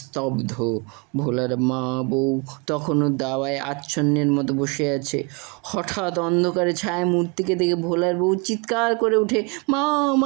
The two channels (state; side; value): quieter; left; 30.7 dB